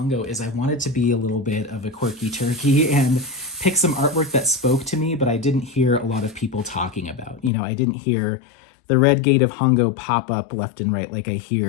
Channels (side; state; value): right; drops out; at 7.5 s